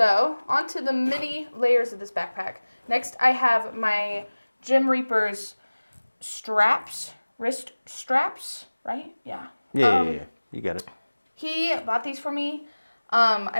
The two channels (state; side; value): inverted; both; correlation -1.00